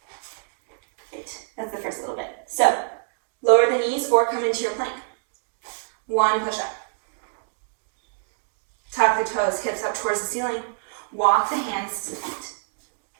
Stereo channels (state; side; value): silent; left; digital silence